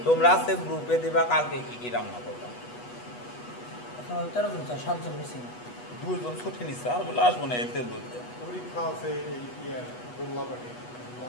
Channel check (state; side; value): late; right; 8.2 ms